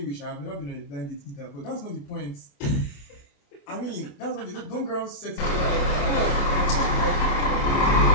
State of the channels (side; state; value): right; late; 28 ms